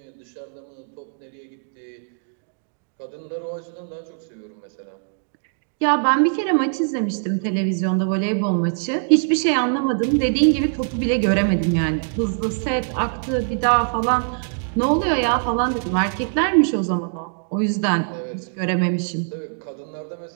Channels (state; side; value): silent; left; digital silence